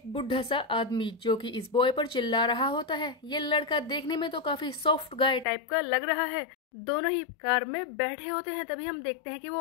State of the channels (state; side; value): drops out; right; at 5.5 s